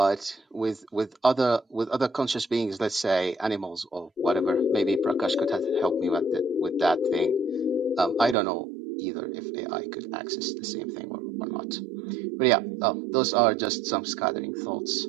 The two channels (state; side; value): drops out; left; at 8.3 s